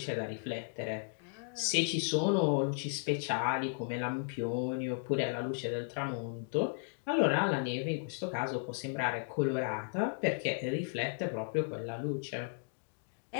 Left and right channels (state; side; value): silent; right; digital silence